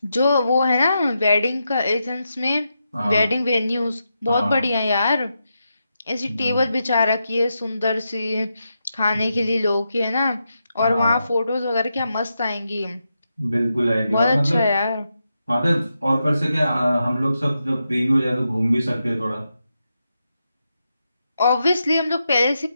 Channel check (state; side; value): inverted; both; correlation -0.86